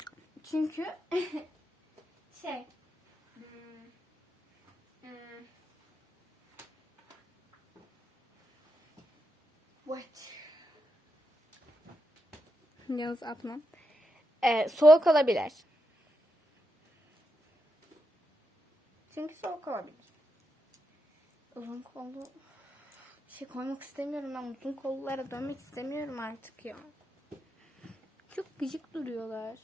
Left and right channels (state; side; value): normal; both; correlation 0.84